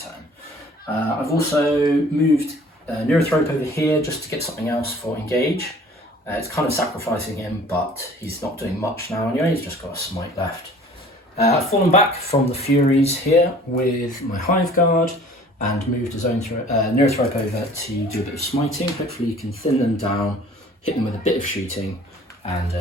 turn. I've also moved Neurothrope over here just to get something else for engage. It's kind of sacrificing him, but he's not doing much now anyway, he's just got a smite left. I've fallen back from the Furies here with my Hive Guard and moved his own Neurothrope over to do a bit of smiting. Hopefully you can thin them down, hit them with a bit of shooting, and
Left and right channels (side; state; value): both; normal; correlation 0.50